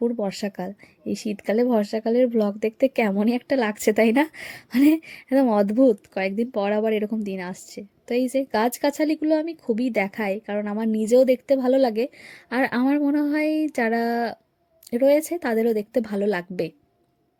বর্ষাকাল। এই শীতকালে বর্ষাকালের ব্লগ দেখতে কেমনই একটা লাগছে, তাই না? মানে একদম অদ্ভুত, কয়েকদিন পর আবার এরকম দিন আসছে। তো এই যে গাছগাছালিগুলো আমি খুবই দেখাই, কারণ আমার নিজেও দেখতে ভালো লাগে, আর আমার মনে হয় যারা রয়েছে তাদেরও দেখতে ভালো লাগবে।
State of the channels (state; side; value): identical; both; correlation 1.00